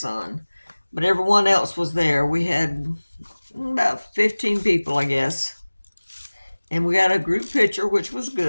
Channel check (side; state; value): both; inverted; correlation -1.00